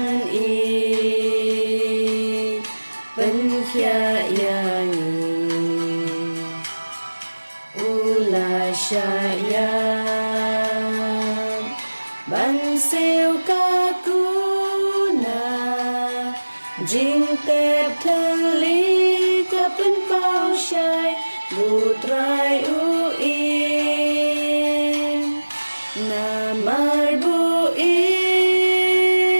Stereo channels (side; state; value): both; inverted; correlation -1.00